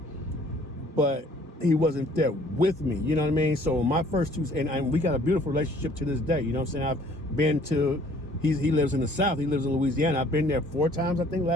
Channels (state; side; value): normal; both; correlation 0.57